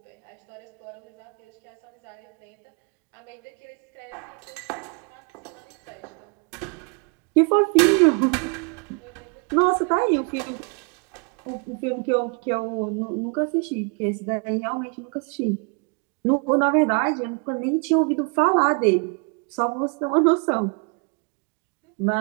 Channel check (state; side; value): quieter; left; 35.0 dB